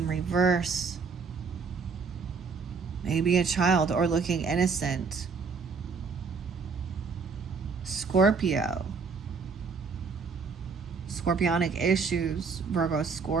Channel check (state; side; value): quieter; left; 5.1 dB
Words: reverse. Maybe a child or looking innocent. Scorpio. Scorpionic issues. Virgo,